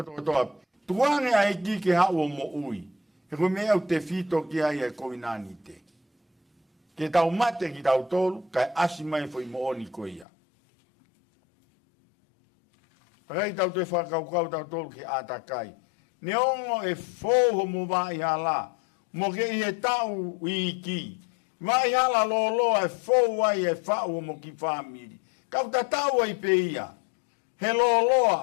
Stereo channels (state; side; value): drops out; right; at 10.2 s